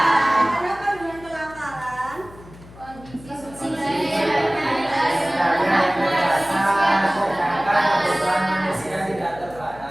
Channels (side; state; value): left; noise; hum, 20 dB below the sound